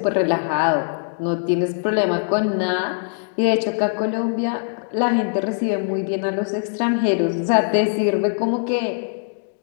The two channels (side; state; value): right; silent; digital silence